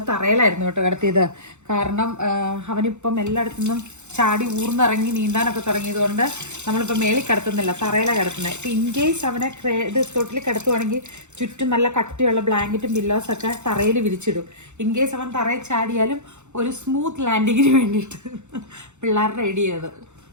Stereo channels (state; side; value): late; left; 0.83 ms